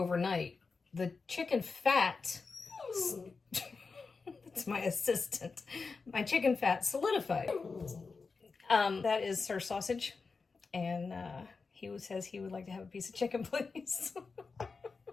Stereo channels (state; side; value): quieter; right; 4.6 dB